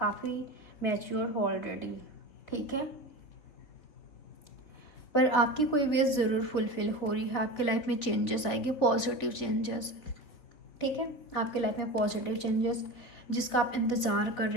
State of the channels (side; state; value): right; late; 4.0 ms